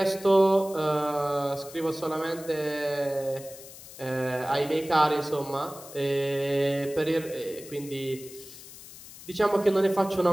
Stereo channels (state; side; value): noise; left; hiss, 16 dB below the sound